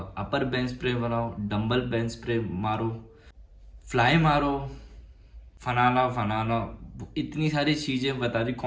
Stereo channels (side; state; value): both; identical; correlation 1.00